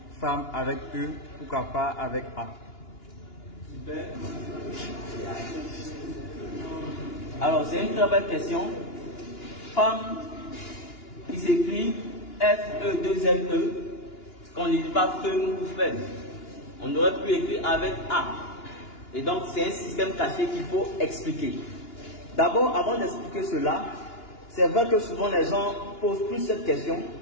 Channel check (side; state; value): right; late; 2.9 ms